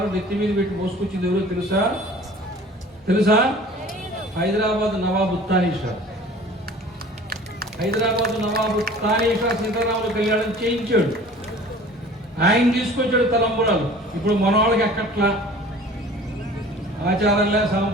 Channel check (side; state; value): both; normal; correlation 0.46